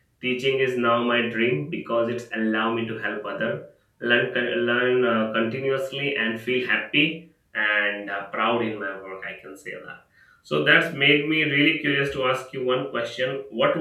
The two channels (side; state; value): both; identical; correlation 1.00